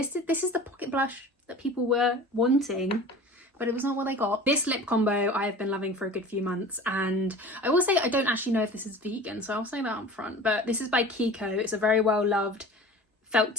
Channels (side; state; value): both; normal; correlation 0.39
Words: is the pocket blush that people were wanting, but it was not what they got. This lip combo I have been loving for a good few months, and I will say I don't actually know if this is vegan, so I'll say that up front, but this is by Kiko. It's a very well loved felt